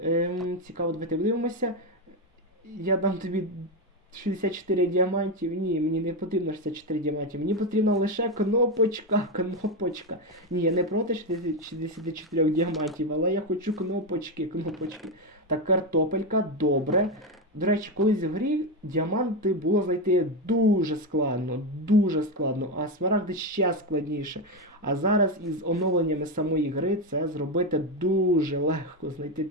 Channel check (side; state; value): both; normal; correlation 0.10